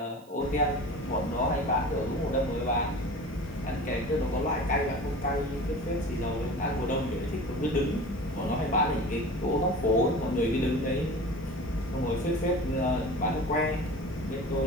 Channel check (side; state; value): right; noise; hiss, 28 dB below the sound